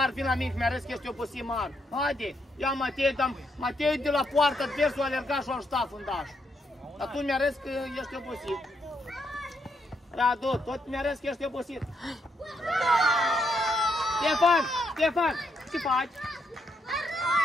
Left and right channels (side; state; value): both; normal; correlation 0.78